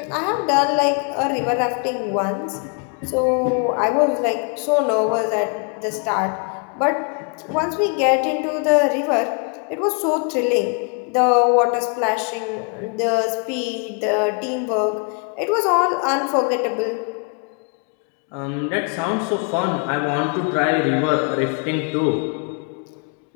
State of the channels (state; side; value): quieter; right; 38.4 dB